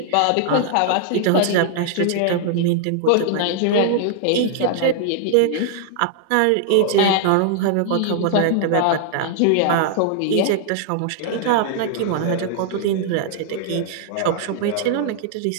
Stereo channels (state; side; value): different; both; correlation -0.01